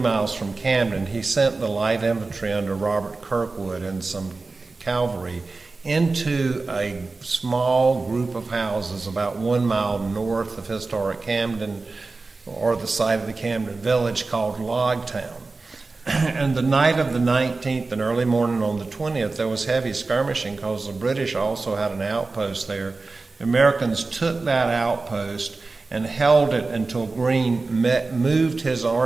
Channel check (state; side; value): quieter; left; 3.7 dB